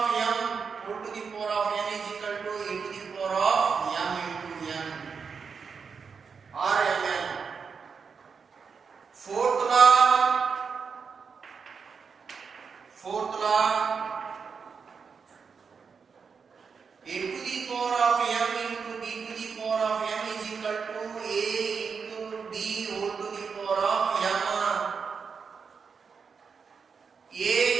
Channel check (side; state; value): left; quieter; 5.7 dB